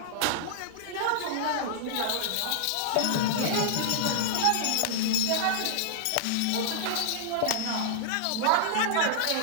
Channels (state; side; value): different; both; correlation -0.02